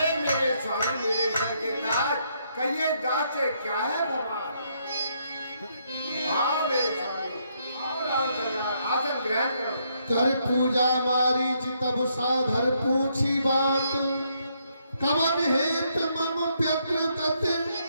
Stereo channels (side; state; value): both; inverted; correlation -0.74